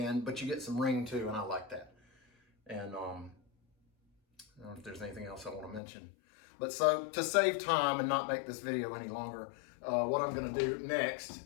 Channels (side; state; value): right; drops out; at 5.8 s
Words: But you get some ring too, and I like that. And I don't know if there's anything else I want to mention. But so to save time and not make this video any longer, what I'm going to do